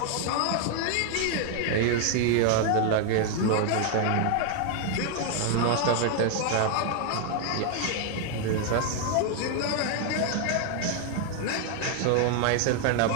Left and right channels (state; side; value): different; both; correlation 0.00